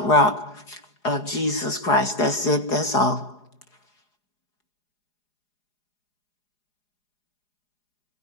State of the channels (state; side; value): late; right; 4.8 ms